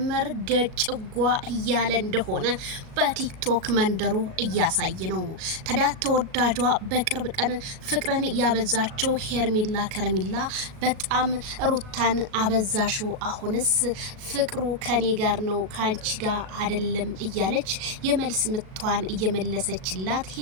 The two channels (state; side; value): late; left; 37 ms